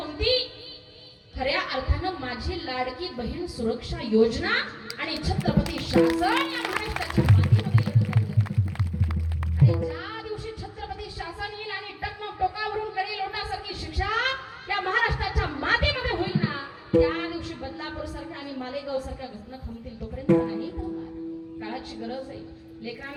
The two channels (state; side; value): identical; both; correlation 1.00